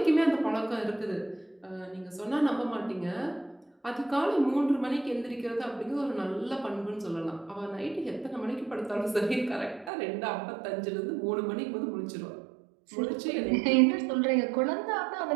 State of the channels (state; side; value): drops out; left; at 9.9 s